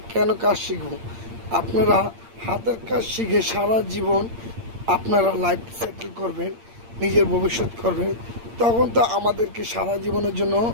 কেন কাজ শিখব। আপনারা হাতের কাজ শিখে সারা জীবন আপনারা লাইফ সেটেল করবেন, নিজের ভবিষ্যৎ করবেন। তখন তো আমাদেরকে সারা জীবনের জন্য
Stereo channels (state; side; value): late; left; 8.7 ms